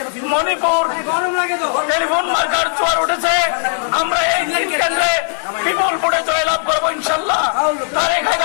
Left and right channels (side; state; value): right; silent; digital silence